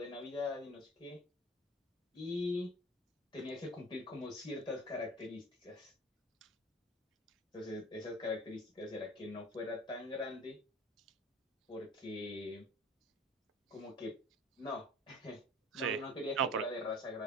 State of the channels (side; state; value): both; normal; correlation 0.42